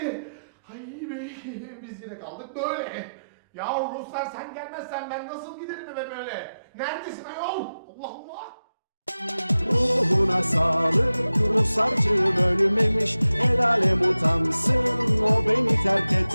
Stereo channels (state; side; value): inverted; both; correlation -0.93